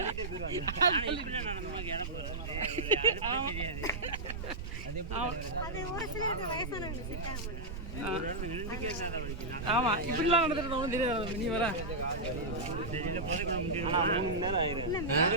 ஆமா, இப்படிலாம் நடந்துட்டு தெரியாது. நீ வர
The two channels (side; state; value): right; noise; rumble, 6 dB below the sound